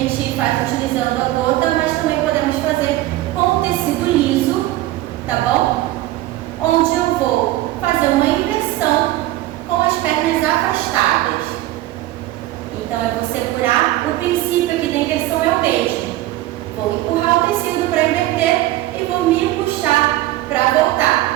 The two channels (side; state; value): left; quieter; 16.1 dB